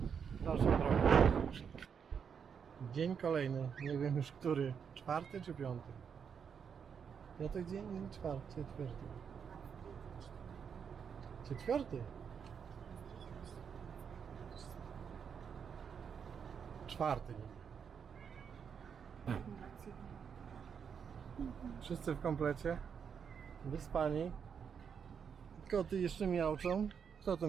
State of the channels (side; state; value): left; quieter; 7.0 dB